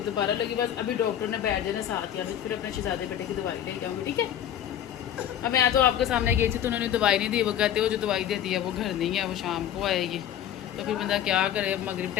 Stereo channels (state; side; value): quieter; right; 10.6 dB